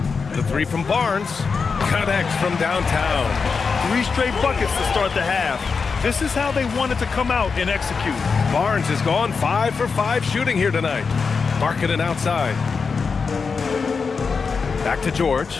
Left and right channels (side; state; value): right; quieter; 5.2 dB